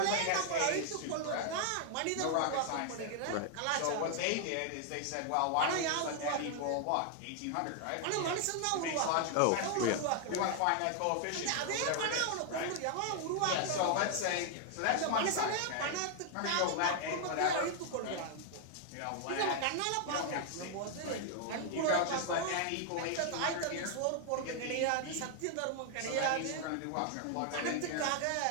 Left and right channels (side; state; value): both; different; correlation 0.00